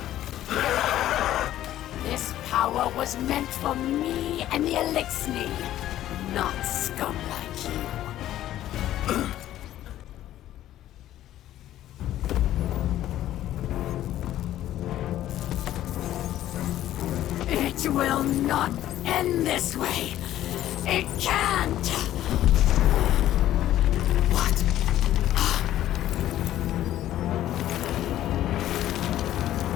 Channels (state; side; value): quieter; right; 13.0 dB